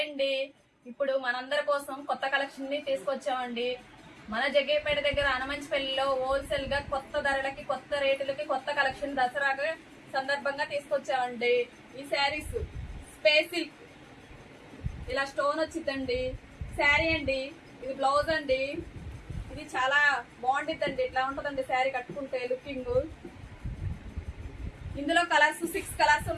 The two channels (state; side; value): identical; both; correlation 1.00